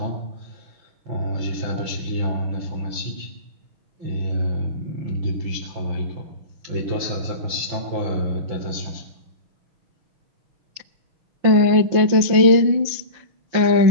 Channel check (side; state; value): left; late; 5.8 ms